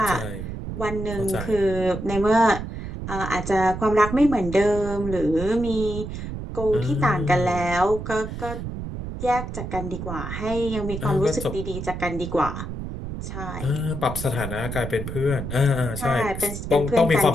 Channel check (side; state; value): right; noise; rumble, 7 dB below the sound